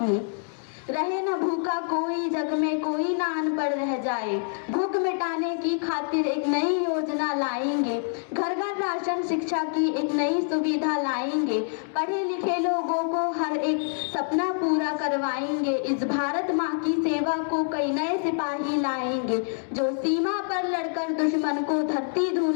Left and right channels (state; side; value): silent; right; digital silence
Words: रहे न भूखा कोई, जग में कोई ना अनपढ़ रह जाए। भूख मिटाने की खातिर एक नई योजना लाएंगे। घर घर राशन, शिक्षा की एक नई सुविधा लाएंगे। पढ़े लिखे लोगों को हर एक सपना पूरा करवाएंगे। इस भारत माँ की सेवा को कई नए सिपाही लाएंगे, जो सीमा पर लड़कर दुश्मन को धरती